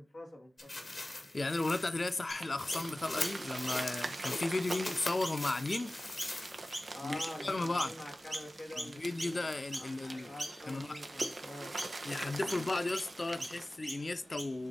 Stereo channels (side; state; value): both; normal; correlation 0.96